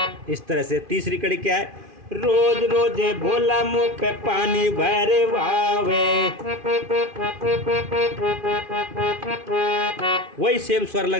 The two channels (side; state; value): left; late; 2.5 ms